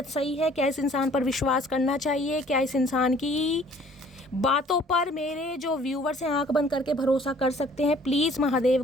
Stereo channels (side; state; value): both; normal; correlation 0.55